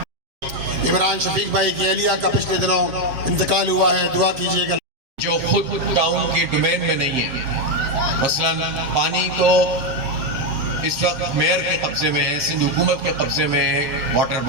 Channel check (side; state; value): left; late; 7.9 ms